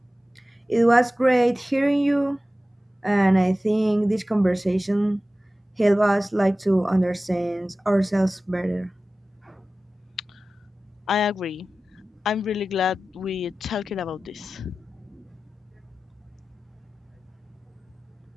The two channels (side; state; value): both; normal; correlation 0.95